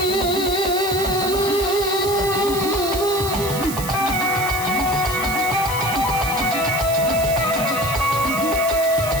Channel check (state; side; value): noise; right; hiss, 8 dB below the sound